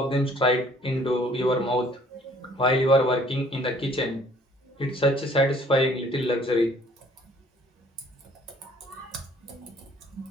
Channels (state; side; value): normal; both; correlation 0.58